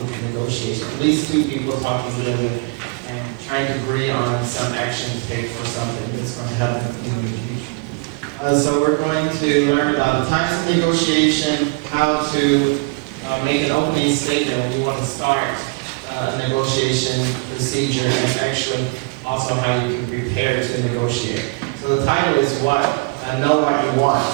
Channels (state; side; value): quieter; left; 28.1 dB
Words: negotiation. At least two people talking together and trying to agree on some action to take for something that's going to happen in the future. So we're going to learn about the types of negotiation, how to make an opening statement when you want to start a negotiation procedure, and actually also how you can prepare to negotiate. So the title is what? Know what you want.